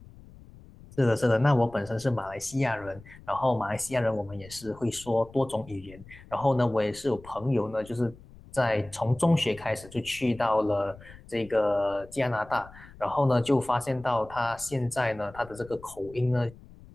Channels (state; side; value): noise; left; rumble, 20 dB below the sound